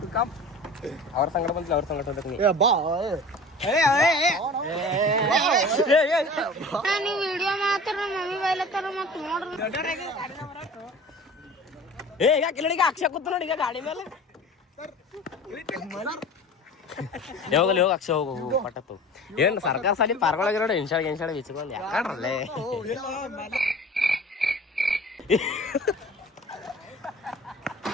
ಅವ್ರ ಸಂಗಡ ಬಂದಿಲ್ಲ, ಅವ್ರ ಸಂಗಡ ಹೋಗ್ಬೇಕು. ಈಗ ಅಕ್ಷಯ ಕೂತ ನೋಡಿ ಈಗ ಗಾಡಿ ಮೇಲೆ. ಯಾವಾಗಲ್ಲಿ ಹೋಗಿ ಅಕ್ಷಯ ಹೋಗು ಪಟ್ಟತ್ತು. ಏನ್ ಸರ್ಕಾರ ಸಾಲಿ ಪಾರ್ಗೊಳಗೆ ನೋಡಿ ಇನ್ಶಾಡ್ ವಿಚ್ಕೊಂಡ್ ಯಾಕಡ್ರಲ್ಲೇ.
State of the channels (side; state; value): both; normal; correlation 0.40